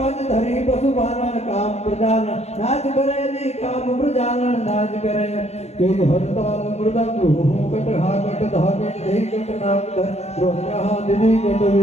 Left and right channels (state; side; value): late; right; 0.31 ms